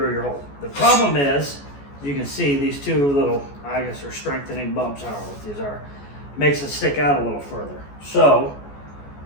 your hole. The problem is, you can see these two little, I guess they're strengthening bumps, I don't know what these are. Makes it stick out a little further. So,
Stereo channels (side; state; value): right; late; 14 ms